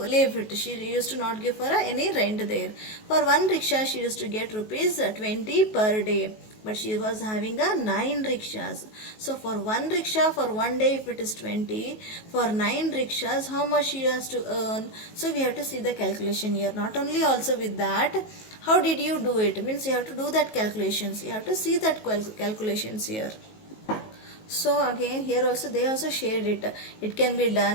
it. She used to not give for any rent there. For one rickshaw she used to get rupees 20 per day. But she was having a 9 rickshaws. So for one rickshaw for one day, if it is 20, for 9 rickshaws, how much she has to earn? So we have to see the calculation here. Not only also with that, how did you do it? Means you have to do that calculations. You have to see that calculations here. So again here also they also shared it. It can be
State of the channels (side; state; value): right; late; 19 ms